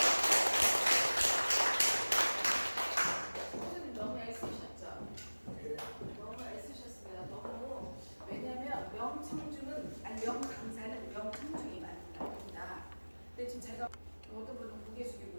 선생님 너무 애쓰셨죠? 너무 애쓰셨습니다. 너무. 왜냐면 명강사는 명청중이 만든다. 근데 지금 제가 어떤 분은 고개 숙이고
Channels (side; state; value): both; inverted; correlation -1.00